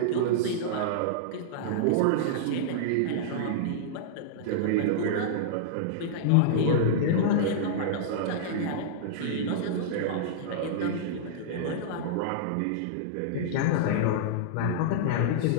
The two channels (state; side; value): different; both; correlation -0.02